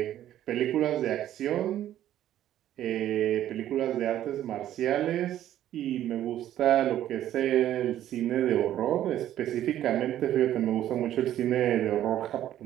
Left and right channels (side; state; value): left; quieter; 12.1 dB